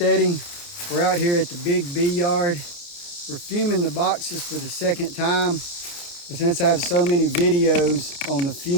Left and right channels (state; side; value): late; right; 29 ms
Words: We're out here at the Big Bee Yard. We're fuming the boxes for the second time. But since I have so many videos on the